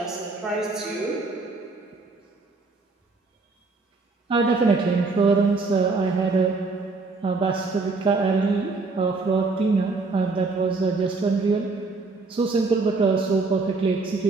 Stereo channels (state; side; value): quieter; left; 3.8 dB